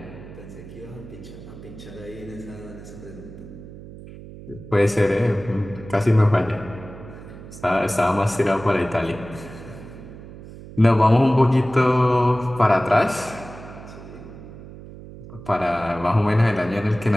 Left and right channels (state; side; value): noise; right; hum, 15 dB below the sound